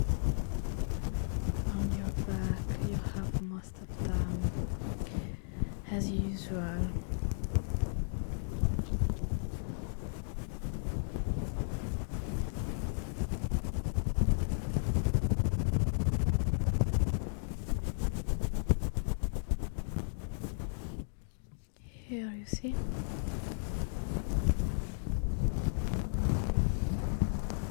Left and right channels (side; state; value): right; silent; digital silence